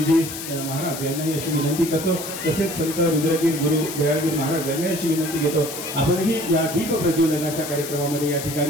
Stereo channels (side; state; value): left; noise; hiss, 9 dB below the sound